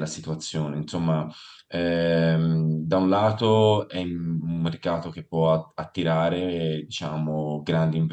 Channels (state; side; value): identical; both; correlation 1.00